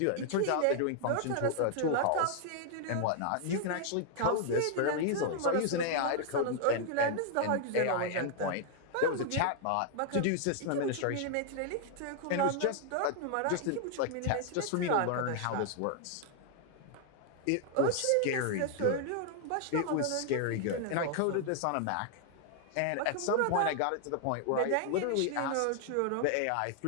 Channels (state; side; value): different; both; correlation 0.00